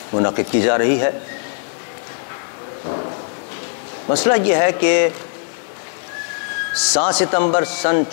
منعقد کی جا رہی ہے۔ مسئلہ یہ ہے کہ 7 ستمبر سن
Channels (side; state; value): right; silent; digital silence